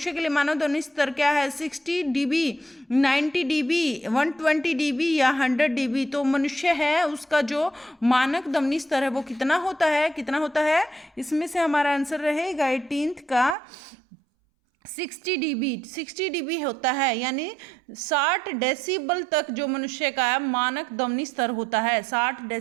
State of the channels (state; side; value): drops out; left; at 13.6 s